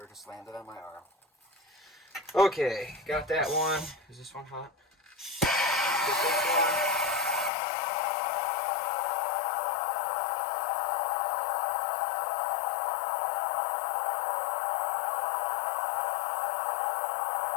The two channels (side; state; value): right; drops out; at 7.5 s